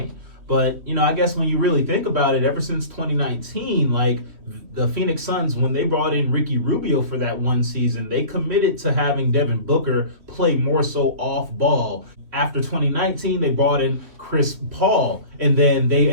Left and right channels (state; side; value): late; left; 3.1 ms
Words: But, I guess when you really think about it, ever since 2019, the Phoenix Suns, when they brought in Ricky Rubio for that one season, they committed to having Devin Booker play more so off ball. After 2019, they brought in Chris Paul, and then they